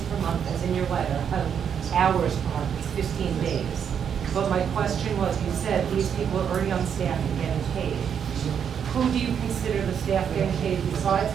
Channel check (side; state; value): left; quieter; 7.9 dB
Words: per month as in your letter, hours per month, it's 15 days. But my question was, you said these people are already on staff and getting paid. Who do you consider the staff getting paid